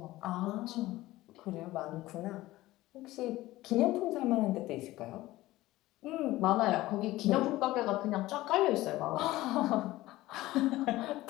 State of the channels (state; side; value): quieter; right; 17.3 dB